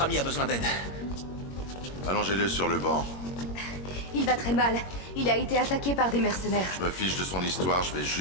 ami a besoin d'aide. Allongez-le sur le banc. Il va très mal. Il a été attaqué par des mercenaires. Je me fiche de son histoire, je vais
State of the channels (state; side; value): late; right; 21 ms